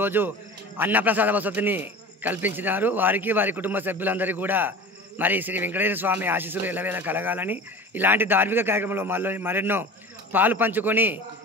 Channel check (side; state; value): both; normal; correlation 0.37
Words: అన్నప్రసాద వసతిని కల్పించినారు. వారికి వారి కుటుంబ సభ్యులందరికీ కూడా మరి శ్రీ వెంకటేశ్వర స్వామి ఆశీస్సులు ఎల్లవేళ కలగాలని, ఇలాంటి ధార్మిక కార్యక్రమంలో మరెన్నో పాలు పంచుకొని